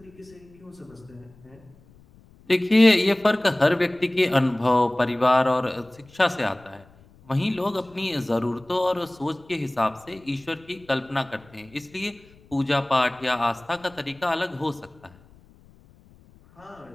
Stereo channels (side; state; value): left; noise; rumble, 27 dB below the sound